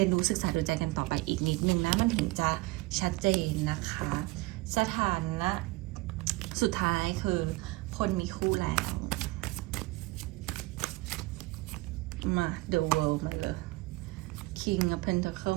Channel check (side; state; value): left; quieter; 22.3 dB